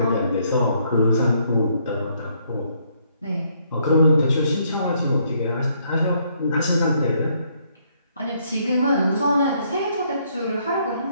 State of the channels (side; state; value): both; inverted; correlation -0.70